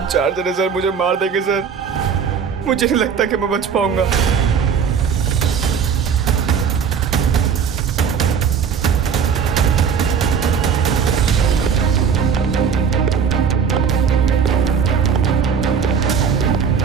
4 जने सर मुझे मार देंगे सर। मुझे नहीं लगता कि मैं बच पाऊंगा।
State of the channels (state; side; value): quieter; left; 6.8 dB